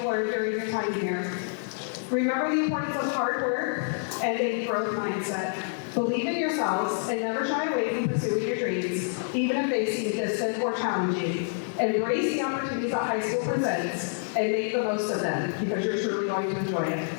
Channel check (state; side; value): silent; right; digital silence